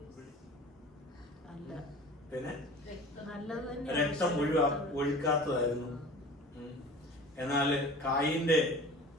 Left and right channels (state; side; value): normal; both; correlation 0.41